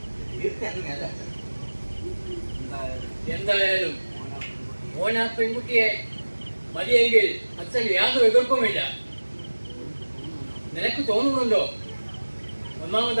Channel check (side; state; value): both; inverted; correlation -1.00